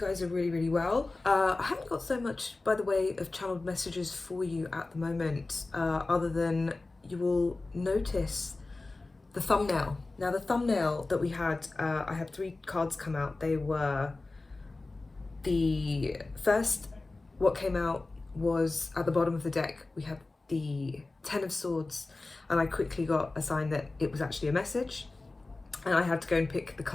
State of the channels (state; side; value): quieter; right; 3.3 dB